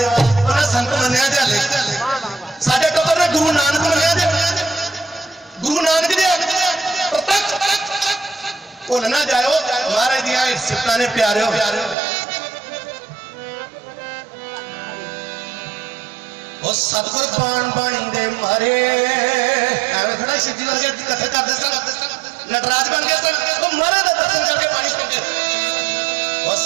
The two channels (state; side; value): drops out; left; at 12.0 s